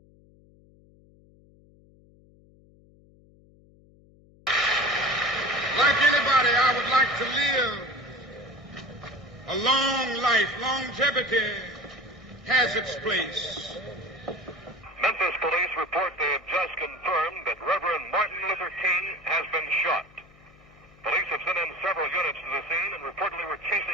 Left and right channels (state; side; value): noise; left; hum, 27 dB below the sound